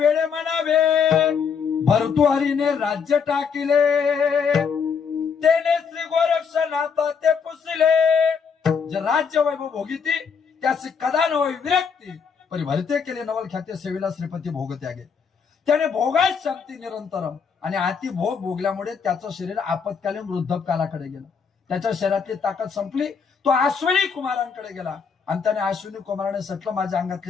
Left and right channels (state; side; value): quieter; right; 6.2 dB